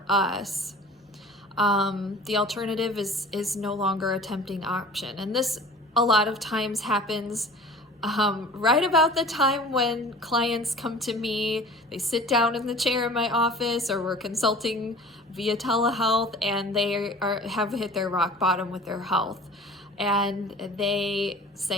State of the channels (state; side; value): normal; both; correlation 0.43